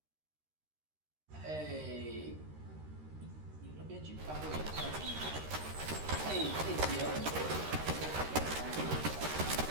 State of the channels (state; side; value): late; left; 13 ms